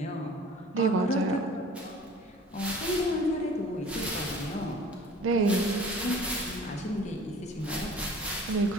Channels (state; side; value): normal; both; correlation 0.47